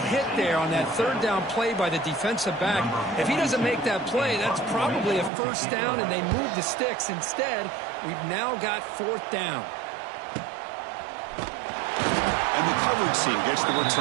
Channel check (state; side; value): drops out; left; at 5.3 s